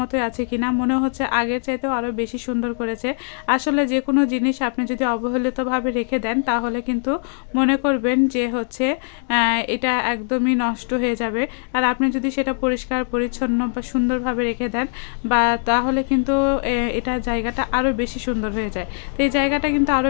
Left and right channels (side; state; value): right; silent; 64 dB below the other